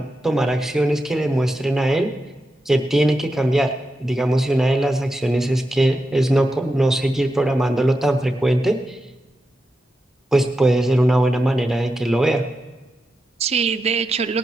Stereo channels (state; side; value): normal; both; correlation 0.88